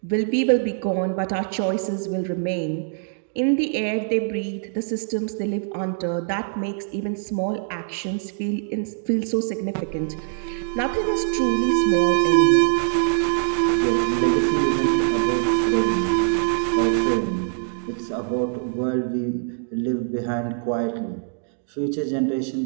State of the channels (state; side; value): silent; left; digital silence